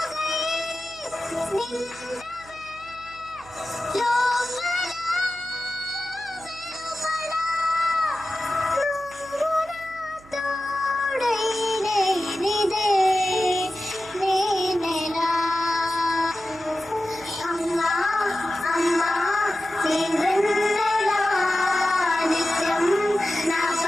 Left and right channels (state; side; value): noise; right; hum, 23 dB below the sound